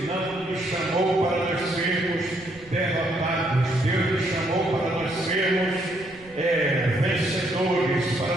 não nos chamou para nós sermos derrotados. Deus nos chamou para nós sermos vencedores, para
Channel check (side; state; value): right; noise; rumble, 26 dB below the sound